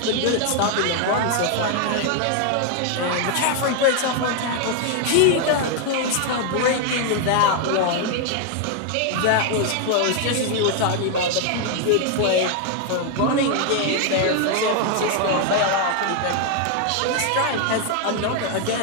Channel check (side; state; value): both; different; correlation 0.00